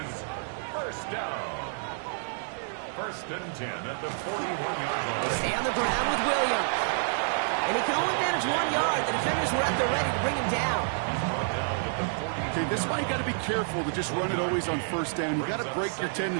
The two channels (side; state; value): left; silent; digital silence